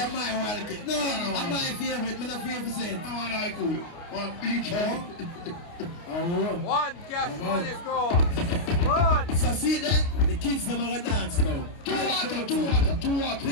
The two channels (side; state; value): right; late; 29 ms